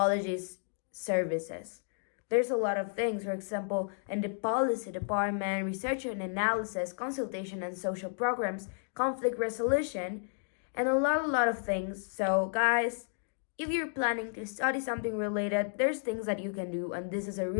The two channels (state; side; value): silent; right; digital silence